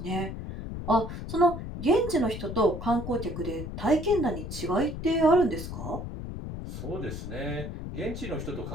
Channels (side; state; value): left; noise; rumble, 7 dB below the sound